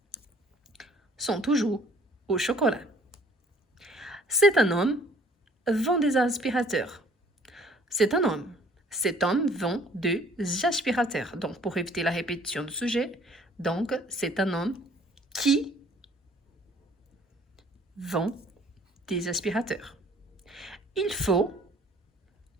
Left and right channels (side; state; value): both; normal; correlation 0.57